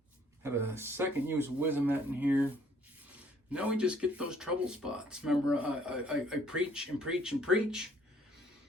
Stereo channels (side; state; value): both; normal; correlation 0.61